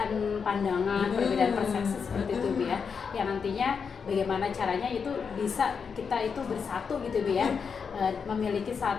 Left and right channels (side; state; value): right; quieter; 6.0 dB